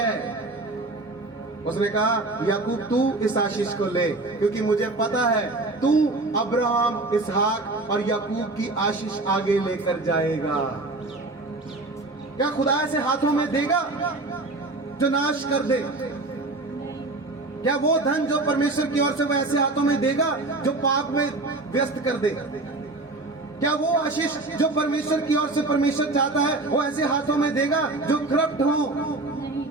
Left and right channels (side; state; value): left; quieter; 3.1 dB